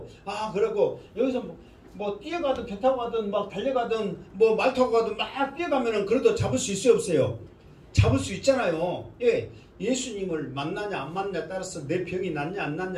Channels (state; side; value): identical; both; correlation 1.00